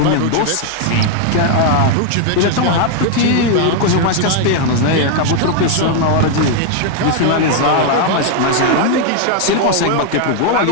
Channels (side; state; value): both; different; correlation 0.00